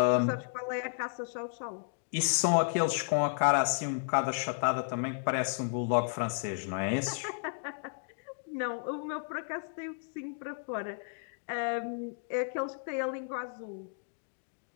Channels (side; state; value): right; silent; digital silence